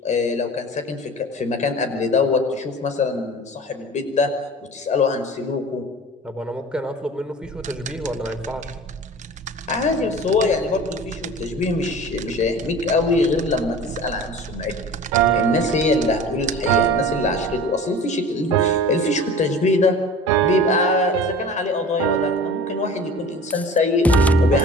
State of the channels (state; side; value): normal; both; correlation 0.39